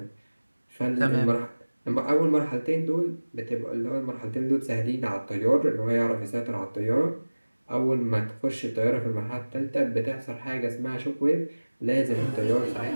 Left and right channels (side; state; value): both; inverted; correlation -1.00